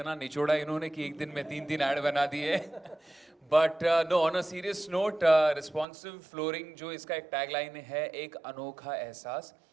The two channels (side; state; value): left; drops out; at 5.9 s